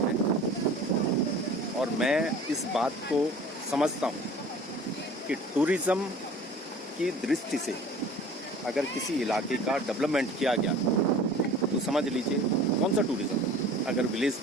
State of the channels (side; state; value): both; normal; correlation 0.44